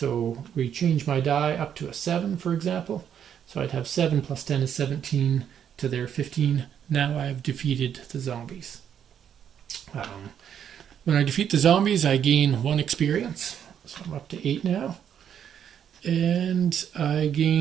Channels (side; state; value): left; quieter; 8.8 dB